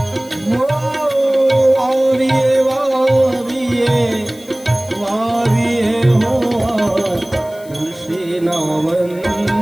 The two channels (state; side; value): noise; left; hiss, 23 dB below the sound